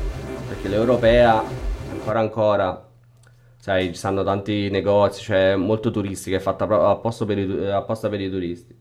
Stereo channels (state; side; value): identical; both; correlation 1.00